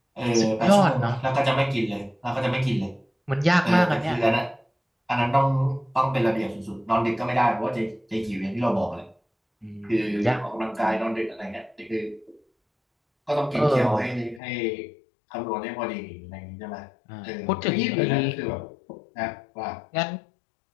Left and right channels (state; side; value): drops out; right; at 14.4 s